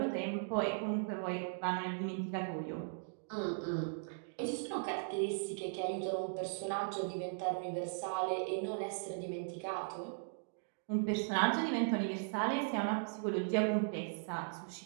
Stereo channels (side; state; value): left; silent; digital silence